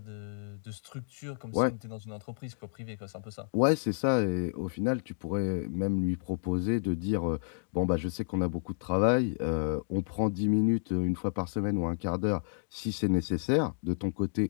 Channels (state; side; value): silent; right; digital silence